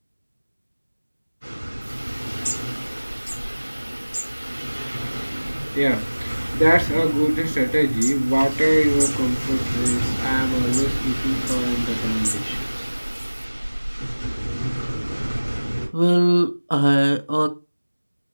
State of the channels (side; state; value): both; inverted; correlation -1.00